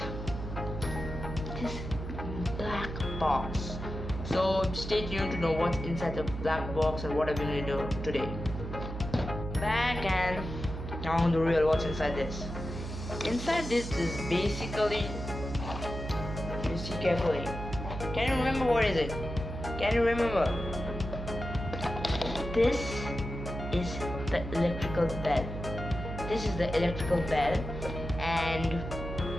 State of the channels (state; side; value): noise; right; hum, 7 dB below the sound